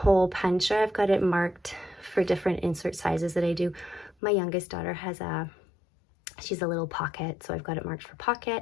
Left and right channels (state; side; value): drops out; right; at 4.2 s